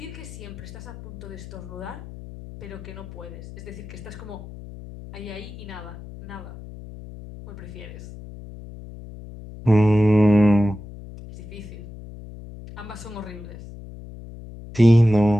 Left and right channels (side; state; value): left; noise; hum, 14 dB below the sound